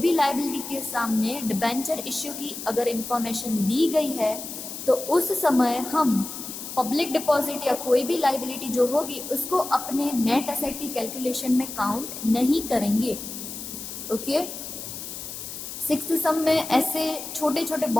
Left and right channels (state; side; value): noise; left; hiss, 9 dB below the sound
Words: लाइबिलिटी के सामने डिबेंचर इश्यू की अगर इंफॉर्मेशन दी गई है, तो उस समय हम पब्लिक डिपॉजिट या कोई भी लाइबिलिटी जो होगी उसको अपने नेट एसेट की कैलकुलेशन में काउंट नहीं करेंगे। ओके, सिक्स्थ सम में ऐसे छोटे छोटे